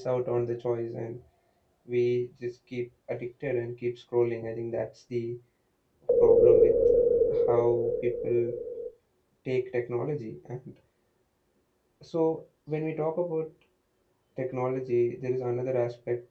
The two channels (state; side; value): identical; both; correlation 1.00